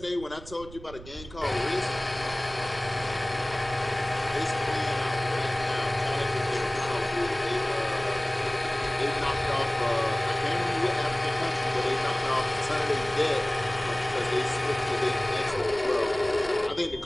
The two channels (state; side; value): noise; right; rumble, 16 dB below the sound